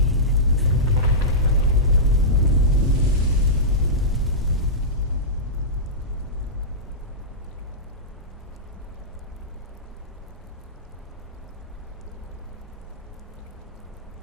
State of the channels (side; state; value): both; normal; correlation -0.14